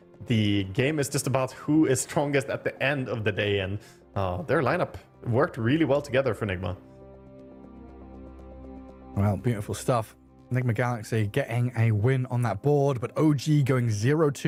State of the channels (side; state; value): both; identical; correlation 1.00